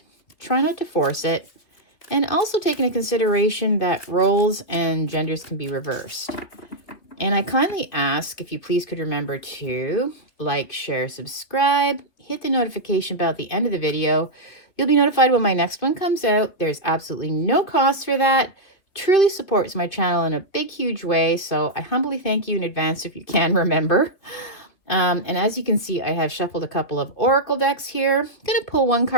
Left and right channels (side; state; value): right; late; 3.3 ms